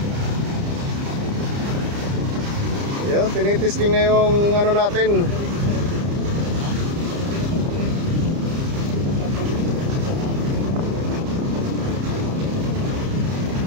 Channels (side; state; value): left; late; 30 ms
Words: Yun, tinitesting na yung ano natin.